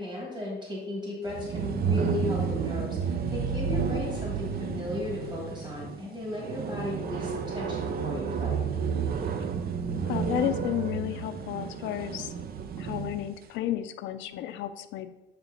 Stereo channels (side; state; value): both; normal; correlation 0.38